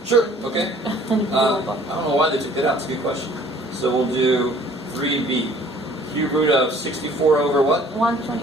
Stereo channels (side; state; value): both; normal; correlation 0.54